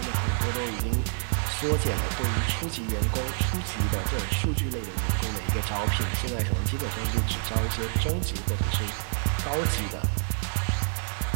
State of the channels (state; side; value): silent; left; digital silence